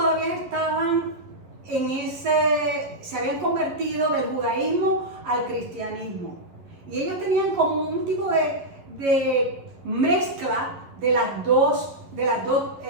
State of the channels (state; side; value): late; left; 11 ms